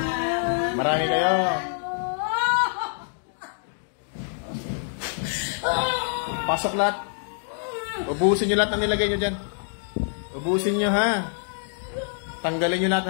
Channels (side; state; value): right; silent; digital silence